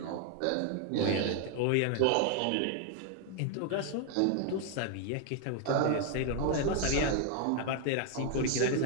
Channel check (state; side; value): different; both; correlation 0.00